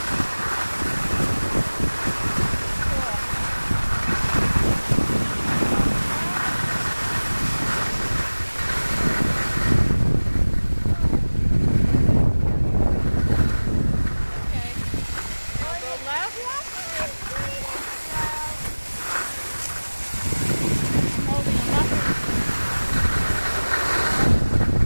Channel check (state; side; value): inverted; both; correlation -1.00